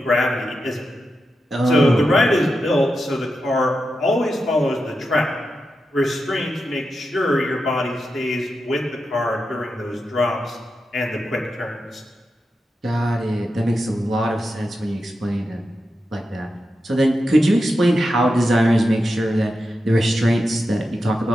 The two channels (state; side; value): normal; both; correlation 0.89